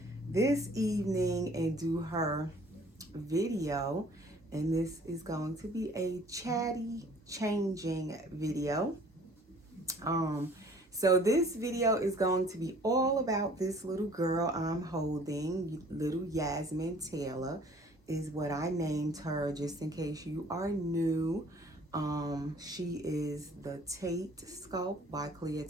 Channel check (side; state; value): both; normal; correlation 0.53